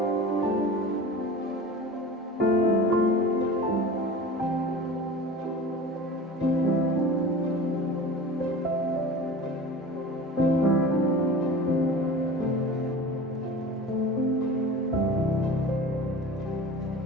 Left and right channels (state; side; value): normal; both; correlation 0.36